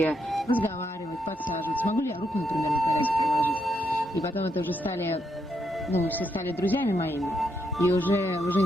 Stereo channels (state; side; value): normal; both; correlation 0.79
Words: разговаривать, подсаживать. Смогу ли я руку, например, на коляске положить? И потом это уже все стали друзьями моими. И уже